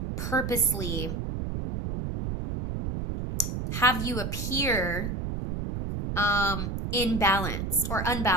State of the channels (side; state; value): right; noise; rumble, 3 dB below the sound